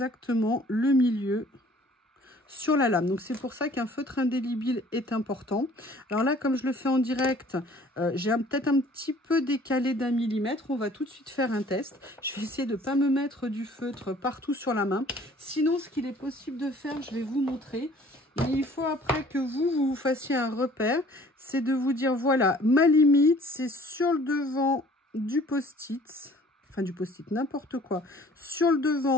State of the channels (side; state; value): both; normal; correlation 0.53